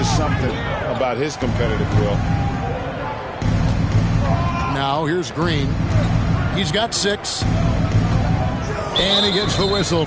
something about his competitive will. Now here's Green. He's got 6. And he gets the whistle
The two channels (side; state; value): both; identical; correlation 1.00